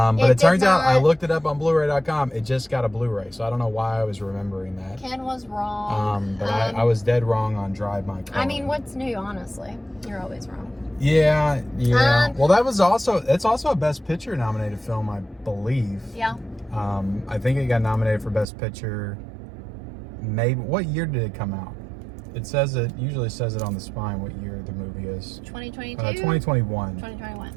it turns out I looked it up on Blu-ray.com. It just got a Blu-ray, so I don't know why I was remembering that. Ken was wrong. But I was dead wrong on Drive My Car. I mean, what's new? Honestly, you're always wrong. Yeah. Well, it's also a Best Picture nominated film, I believe. Yeah. I think it got nominated for Best Picture. Maybe what year did it come out? It usually says it on the spine what year the movie is. 2022? 2021.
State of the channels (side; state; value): left; drops out; at 18.4 s